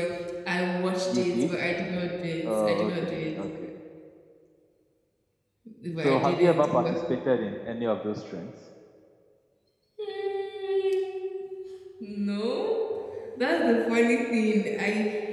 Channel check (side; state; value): both; identical; correlation 1.00